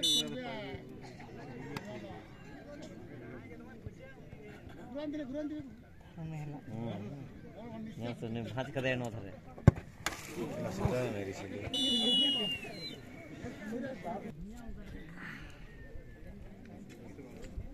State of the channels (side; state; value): both; identical; correlation 1.00